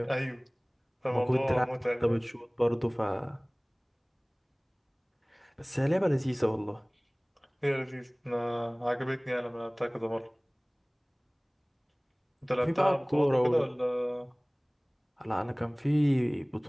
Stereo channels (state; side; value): identical; both; correlation 1.00